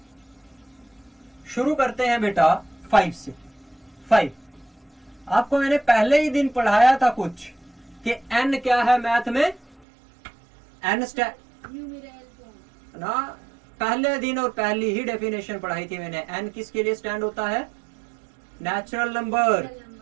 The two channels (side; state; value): left; drops out; at 9.9 s